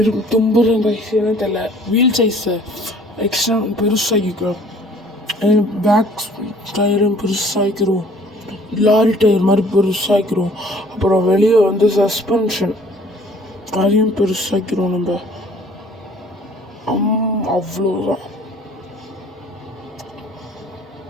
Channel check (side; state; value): both; normal; correlation 0.54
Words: தும்புறேன் கைஸ். என்ன தெரியல, வீல் சைஸை எக்ஸ்ட்ரா பெருசாகிக்கிறோம். பேக் டயரும் பெருசாகிக்கிறோம். லாரி டயர் மாதிரி பெருசாகிக்கிறோம். அப்புறம் வெளியே வந்து சஸ்பென்ஷன் அதையும் பெருசாக்கிறோம் நம்ம. அவ்வளோதான்.